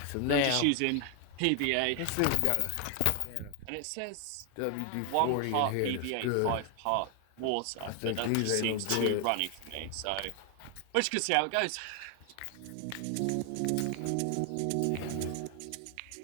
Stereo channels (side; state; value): both; different; correlation 0.00